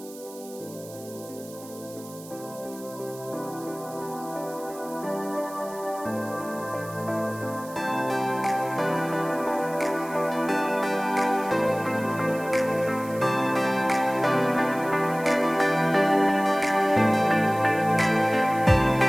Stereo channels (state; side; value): noise; right; hiss, 19 dB below the sound